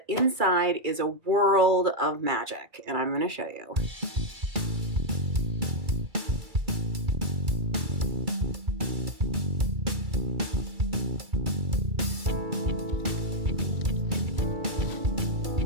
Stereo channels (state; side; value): late; left; 2.3 ms